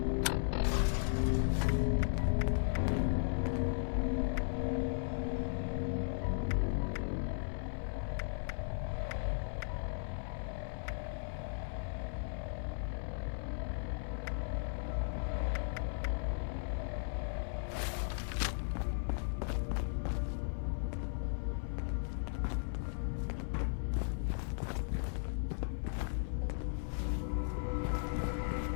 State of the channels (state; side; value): silent; right; digital silence